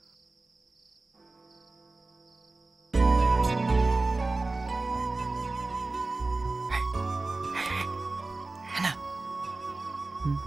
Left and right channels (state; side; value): quieter; left; 3.3 dB